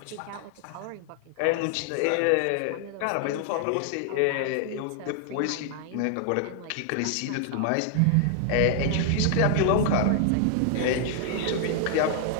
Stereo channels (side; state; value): both; different; correlation 0.00